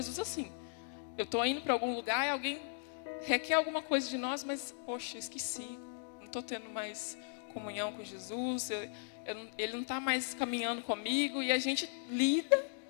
assim. Eu estou indo para algum lugar e alguém requer alguma coisa de nós, mas, poxa, eu esqueci. Não estou tendo mais comunhão com Jesus, ele não está mais caminhando comigo. E a gente lida,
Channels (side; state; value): right; silent; digital silence